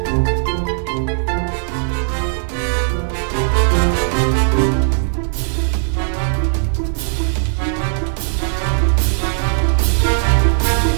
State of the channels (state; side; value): silent; left; digital silence